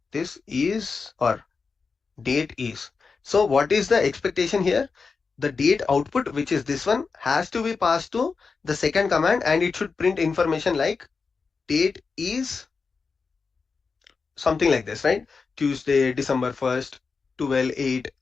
this is or date is. So what is the expectation here? The date output, which is this one, has to be passed to the second command and it should print information like date is something like this, right? Tuesday, December 1st, 12/8,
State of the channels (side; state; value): right; quieter; 4.8 dB